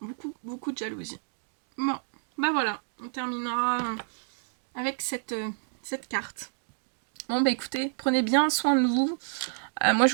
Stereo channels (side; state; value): left; silent; digital silence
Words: Beaucoup de jalousie. Bon, bah voilà, on terminera avec cette carte. Bon bah écoutez, prenez bien soin de vous. Moi